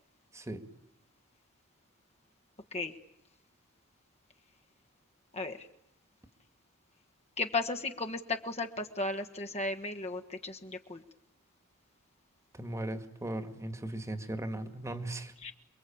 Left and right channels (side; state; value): both; normal; correlation 0.38